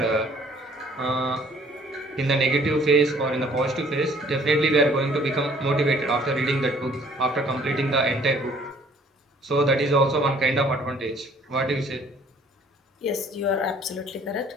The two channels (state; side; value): normal; both; correlation 0.57